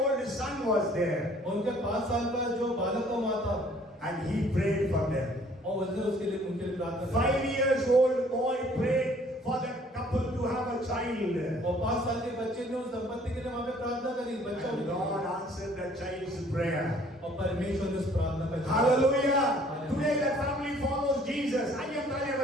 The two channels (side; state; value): both; normal; correlation 0.58